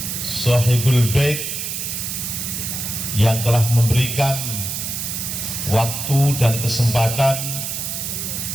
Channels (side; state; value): right; noise; hiss, 4 dB below the sound